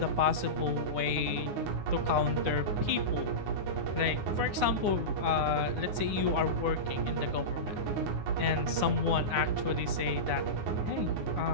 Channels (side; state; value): left; late; 9.7 ms